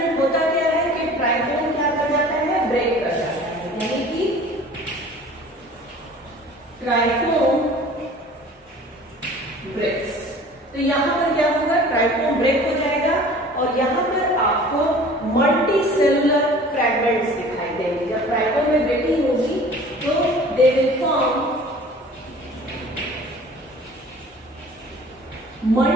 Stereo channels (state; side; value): normal; both; correlation 0.45